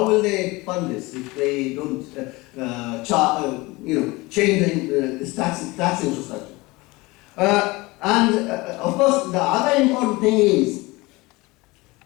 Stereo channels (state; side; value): quieter; right; 22.7 dB